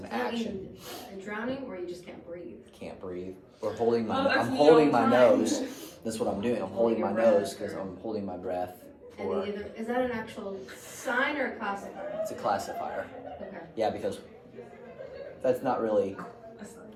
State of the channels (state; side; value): identical; both; correlation 1.00